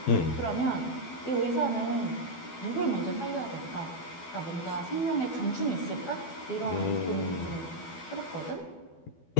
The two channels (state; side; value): late; right; 12 ms